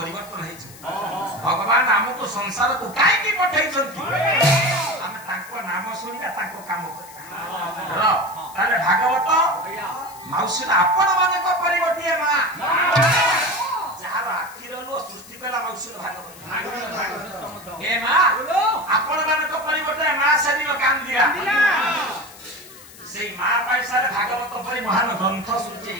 है भगवान हमको संसार को काहे की पठाई छथि हम तांको नाम सुनिबा तांको काम करिबा र ताले भागवत माउसिला आपण माने को परिवर्तिया मां जहार आखिर लो सृष्टि पेला माउसिला भागवत ए मां आपण माने को परिवर्तिया मां सेदिनो काम दिया सेई मां पैसा रे भागवत परि महान ग्रंथ सृष्टि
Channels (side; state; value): left; noise; hiss, 20 dB below the sound